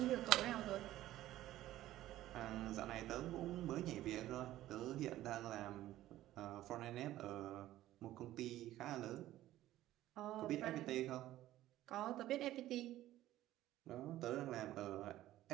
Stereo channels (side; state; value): left; quieter; 14.5 dB